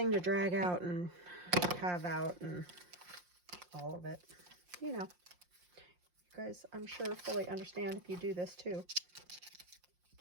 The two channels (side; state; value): left; late; 5.6 ms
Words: to drag out and have out and all of it. You know, you guys, I'm sure, fully understand if you do this too.